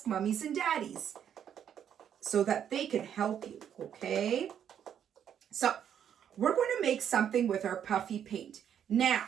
mummies and daddies so that they can help you, okay? So we're going to make something with our puffy paint.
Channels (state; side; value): quieter; left; 9.0 dB